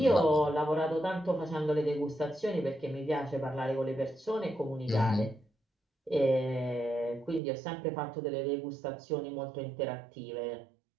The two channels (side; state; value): left; drops out; at 7.4 s